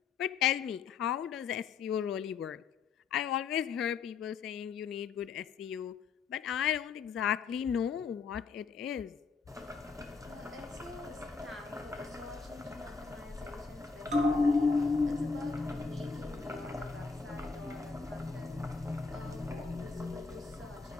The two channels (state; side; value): quieter; right; 5.2 dB